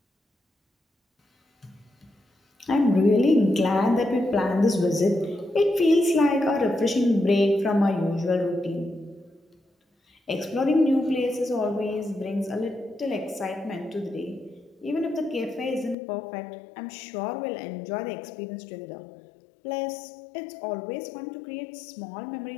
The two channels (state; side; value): drops out; right; at 16.0 s